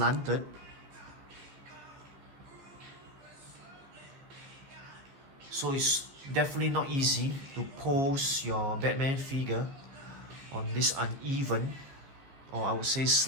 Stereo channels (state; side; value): late; left; 14 ms